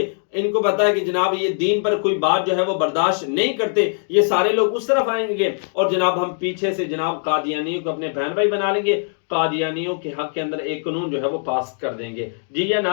इनको पता है कि जनाब ये दीन पर कोई बात जो है वो बर्दाश्त नहीं करते, ये सारे लोग उस तरफ आएंगे और जनाब हम पीछे से जनाब कादियानियों को अपने बहन भाई बना लेंगे, कादियानियों के हक के अंदर एक कानून जो है वो पास कर देंगे। जी या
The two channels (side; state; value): right; silent; digital silence